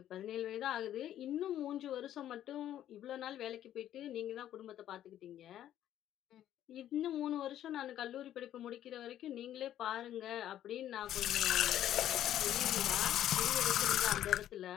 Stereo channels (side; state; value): right; quieter; 11.7 dB